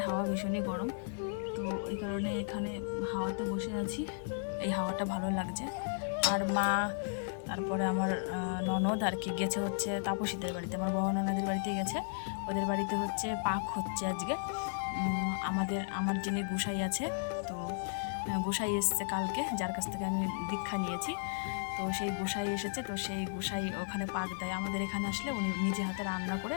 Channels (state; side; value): silent; right; digital silence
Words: হাওয়া ভীষণই গরম, তো এই কারণে এখানে হাওয়াতে বসে আছি, এই হাওয়াটা ভালো লাগছে। আর মা, তারপরে আমার ননদ আর কি গেছে হচ্ছে তাপসীদের বাড়িতে, আমার বড় ননদের বাড়িতে গেছে, ওদের বাড়িতে হচ্ছে পাক হচ্ছে আজকে। আমার যিনি গোসাই আছে, তো গোসাই এসছে কালকে, যার কাছ থেকে আমি দীক্ষা নিয়েছি, তো সেই গোসাই এসেছে, তো সেই গোসাই ওখানে পাক দেয়, আমাদের এখানে আসলে উনি নিজে হাতে রান্না করে